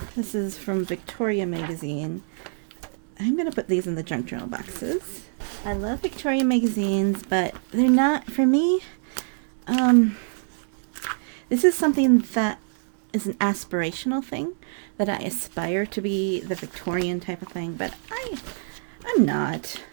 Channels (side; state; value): left; silent; 62 dB below the other